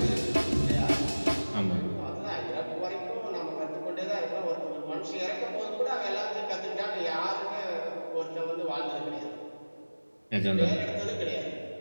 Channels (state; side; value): inverted; both; correlation -1.00